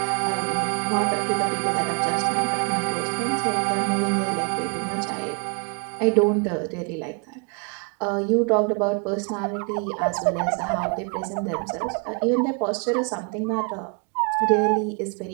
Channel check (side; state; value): left; quieter; 36.2 dB